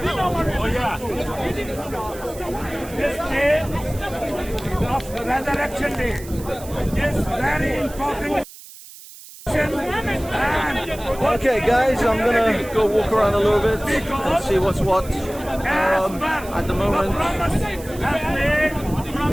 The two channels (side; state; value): right; noise; hiss, 17 dB below the sound